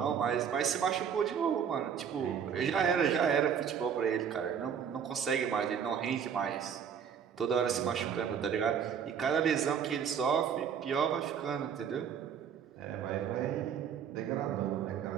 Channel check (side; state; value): left; quieter; 7.7 dB